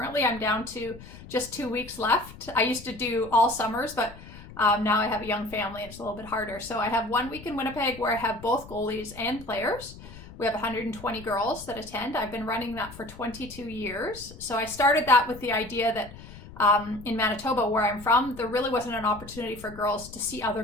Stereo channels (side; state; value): left; noise; rumble, 17 dB below the sound